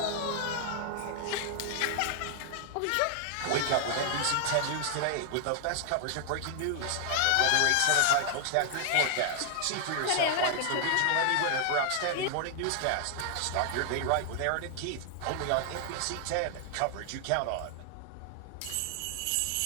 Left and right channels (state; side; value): different; both; correlation 0.00